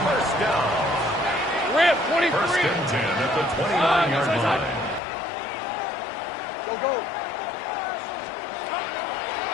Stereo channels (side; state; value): right; drops out; at 5.0 s